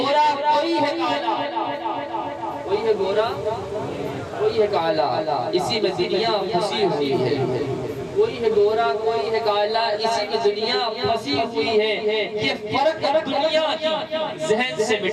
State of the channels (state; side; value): identical; both; correlation 1.00